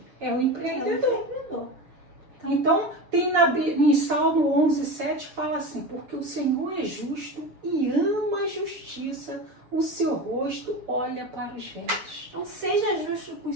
É o empreendedor. Então, tem em Salmo 11:7 fala assim, porque o Senhor é justo e ama a justiça, o seu rosto olha para os retos. Então, seja justo com os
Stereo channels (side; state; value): left; late; 6.8 ms